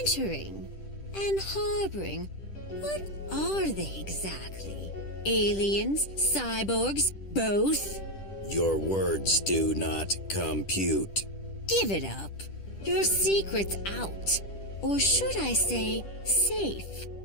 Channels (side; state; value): right; late; 10 ms